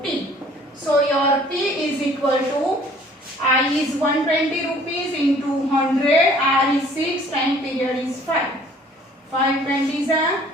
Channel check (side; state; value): both; normal; correlation 0.55